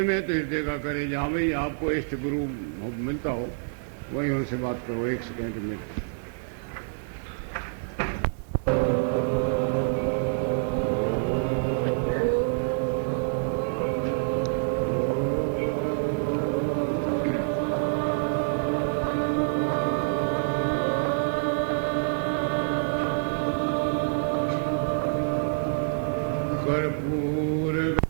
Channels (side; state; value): left; silent; 59 dB below the other